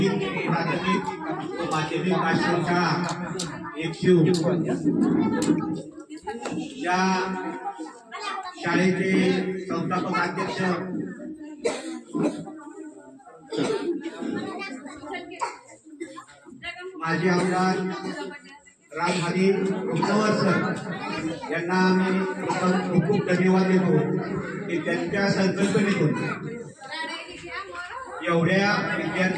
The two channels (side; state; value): both; identical; correlation 1.00